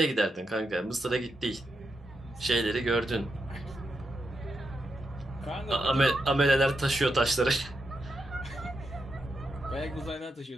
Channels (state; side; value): normal; both; correlation 0.84